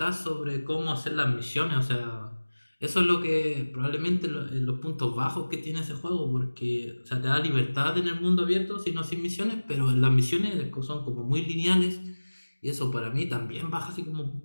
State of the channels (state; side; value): inverted; both; correlation -1.00